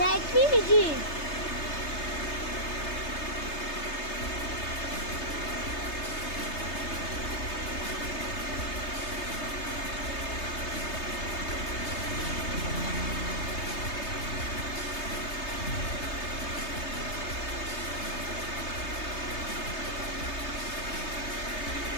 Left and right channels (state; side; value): late; right; 3.3 ms